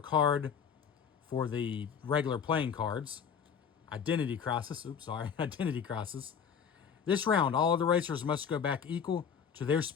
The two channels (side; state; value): right; quieter; 7.2 dB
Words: for the regular playing cards. Identity Crisis. Oops, sorry. Identity Crisis. This round, all of the racers must go back equal to their